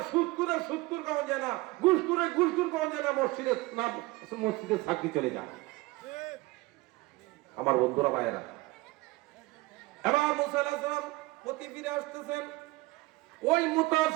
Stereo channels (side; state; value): left; quieter; 21.1 dB